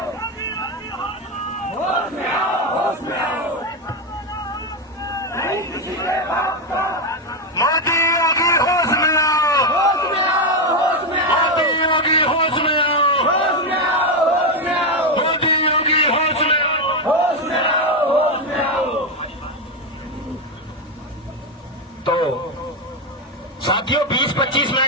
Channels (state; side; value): normal; both; correlation 0.08